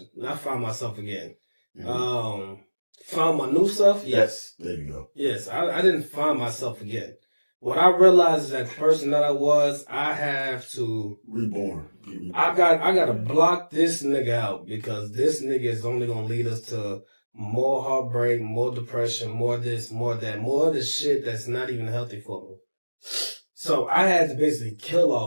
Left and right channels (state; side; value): inverted; both; correlation -1.00